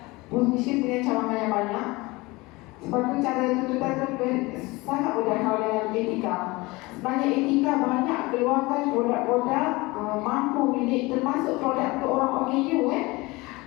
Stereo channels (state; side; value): quieter; right; 22.7 dB